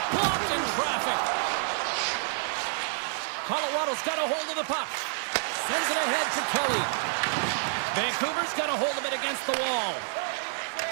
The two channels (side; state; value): left; silent; digital silence